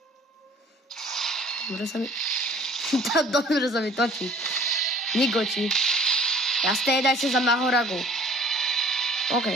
Dobre sa mi točí. Nigoči. Jasné, dajte za Mahoragu. OK,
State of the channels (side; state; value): both; normal; correlation 0.52